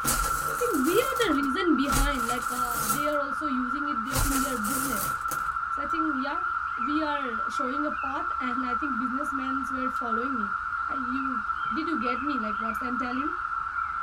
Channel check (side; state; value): both; identical; correlation 1.00